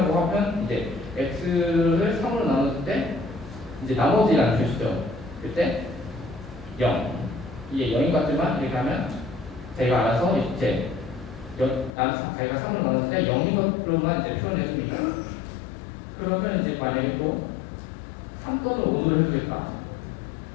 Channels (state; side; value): drops out; right; at 12.0 s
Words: 하면 이제 x를 3으로 나눴을 때 이제 나머지라는 뜻이죠. 그때 0 이게 0인 것 같지만 이렇게 하면 저희가 알아서 이제 자기가 3으로 나눴을 때 0인 것으로만 이제 표현해 줍니다. 그러면 이제 만약에 또 3 또는 5를 해주겠다.